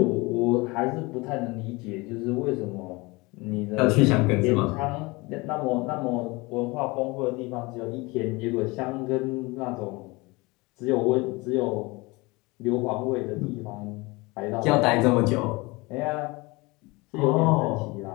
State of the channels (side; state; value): right; quieter; 24.3 dB